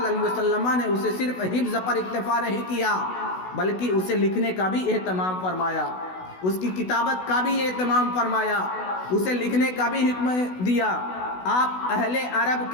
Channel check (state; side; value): late; right; 16 ms